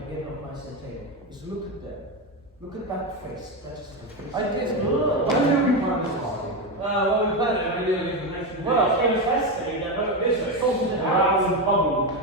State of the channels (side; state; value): both; normal; correlation 0.12